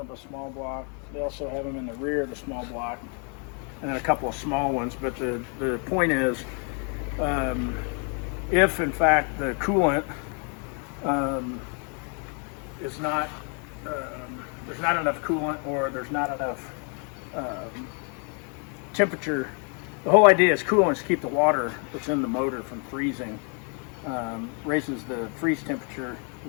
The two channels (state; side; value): quieter; right; 39.0 dB